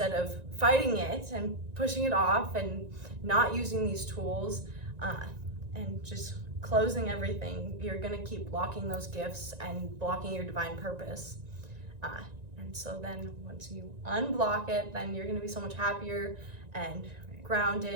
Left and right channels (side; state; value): left; late; 1.9 ms